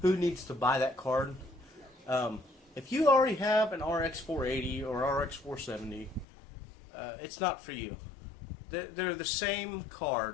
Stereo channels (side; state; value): right; drops out; at 6.2 s